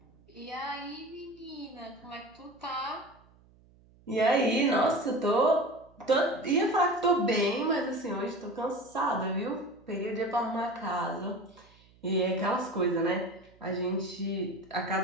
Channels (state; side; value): noise; right; hum, 28 dB below the sound